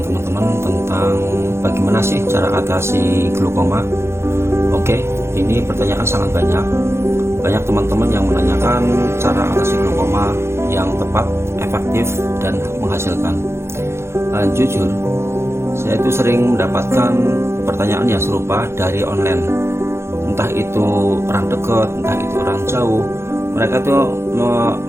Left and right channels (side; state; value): left; late; 0.13 ms